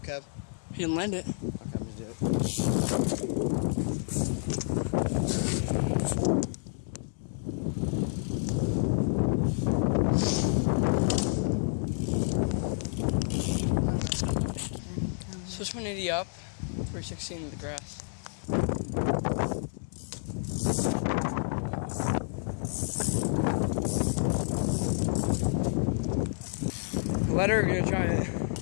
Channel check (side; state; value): right; silent; digital silence